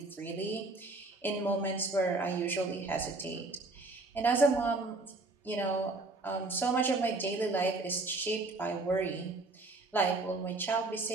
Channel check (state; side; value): quieter; left; 3.3 dB